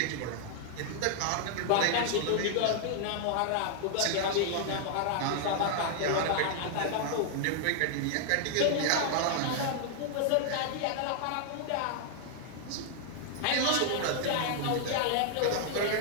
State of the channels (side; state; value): both; different; correlation -0.01